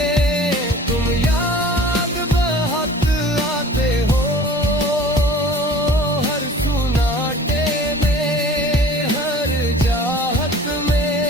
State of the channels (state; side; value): normal; both; correlation 0.45